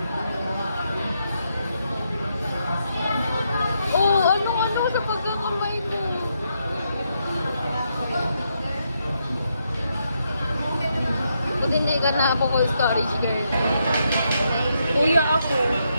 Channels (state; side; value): inverted; both; correlation -0.80